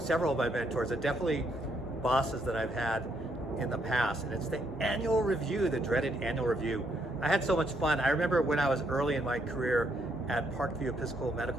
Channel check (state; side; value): normal; both; correlation 0.74